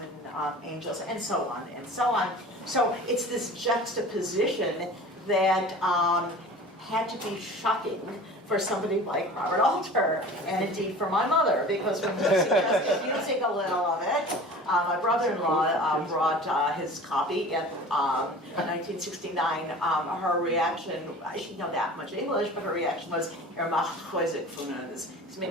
angels, and so on and so on. So it's this juxtaposition that had to be shocking for somebody like Robert Alter, and indeed for my mother, because when we suggested using a little of it, my brother-in-law brought his copy in 1969. Her reaction, she didn't know that much English, but her reaction was, he's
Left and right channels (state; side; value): normal; both; correlation 0.40